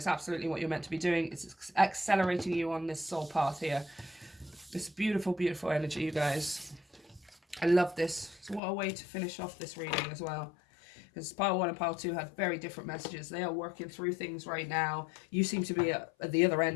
absolutely what you're meant to be doing. It's accelerating you on this soul path here. This beautiful, beautiful energy, you guys. I love this. So what a way to finish off this reading as well. Because pile 1 and pile 2 had very different messages. They are working through things right now. You seem to be at the other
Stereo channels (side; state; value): right; drops out; at 8.6 s